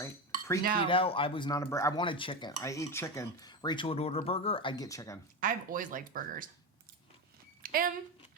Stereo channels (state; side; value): normal; both; correlation 0.17